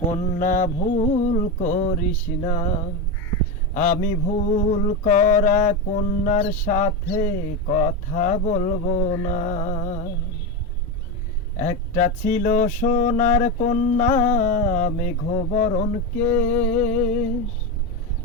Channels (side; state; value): both; normal; correlation 0.14